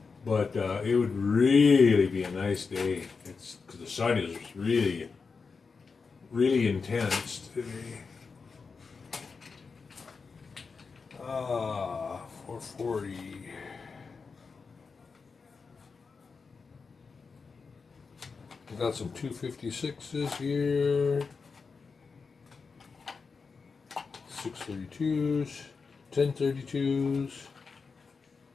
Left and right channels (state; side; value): quieter; right; 4.9 dB